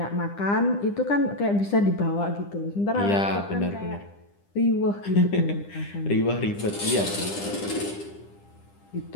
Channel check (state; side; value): late; right; 10 ms